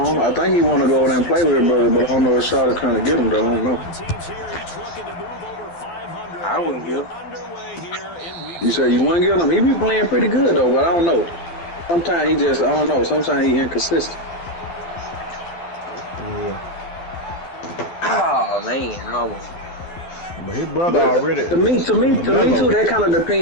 think he want to go over there and play with his brother, but I don't know if Charlotte trying to get him though. I don't know. I wouldn't give. You say you wouldn't get him? He be playing pretty good though, but I don't know. Sometimes he just, I don't know. Sometimes he inconsistent. Yeah. Oh man, almost. But his brother already. To me too, that kind of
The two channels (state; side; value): late; right; 12 ms